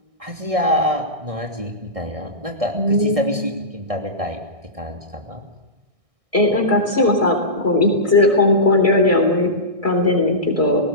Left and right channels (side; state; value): left; late; 1.6 ms